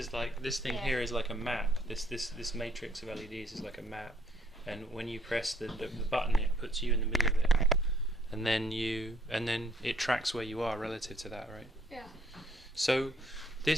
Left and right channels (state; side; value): normal; both; correlation 0.65